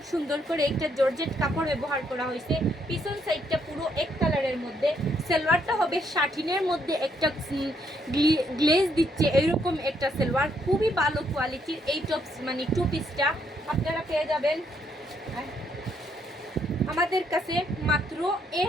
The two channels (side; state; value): both; normal; correlation 0.73